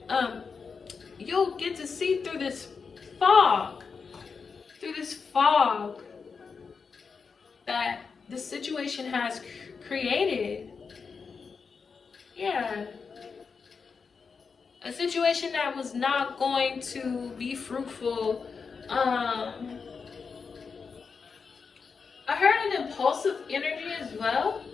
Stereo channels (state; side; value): quieter; right; 5.4 dB